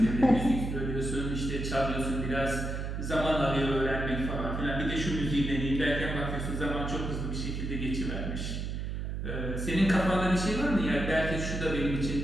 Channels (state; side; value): noise; right; hum, 3 dB below the sound